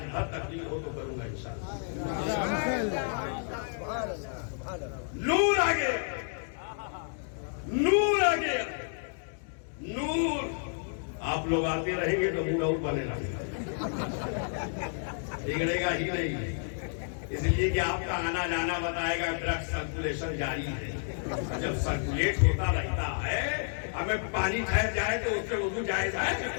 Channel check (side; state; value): right; silent; digital silence